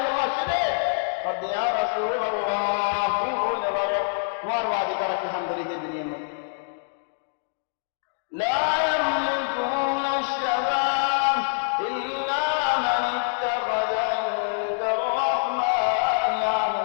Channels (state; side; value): silent; right; digital silence